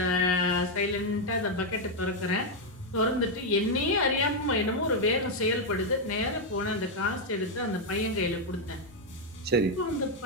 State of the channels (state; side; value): normal; both; correlation 0.01